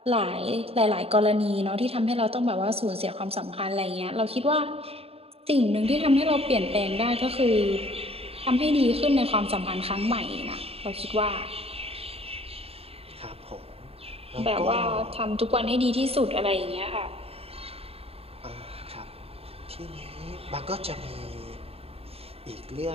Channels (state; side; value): late; left; 0.28 ms